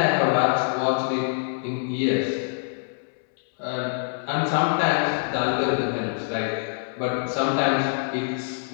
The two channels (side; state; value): right; silent; 62 dB below the other